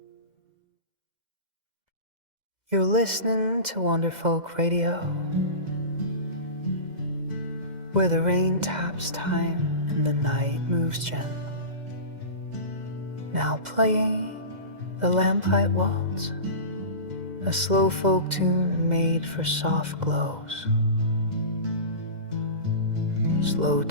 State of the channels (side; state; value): left; late; 2.0 ms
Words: You're listening to Wanderfolk Radio, where the rain taps time and the night moves gently. Now playing the Lamplight Waltz, a slow folk tune made for soft glows, slow